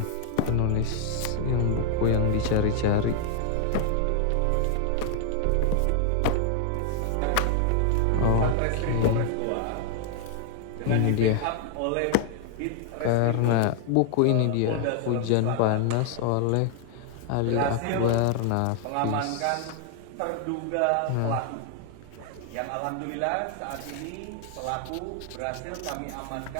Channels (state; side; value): different; both; correlation 0.00